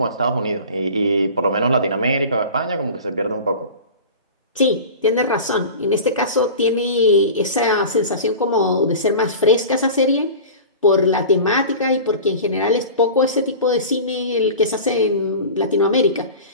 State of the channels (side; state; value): both; inverted; correlation -0.35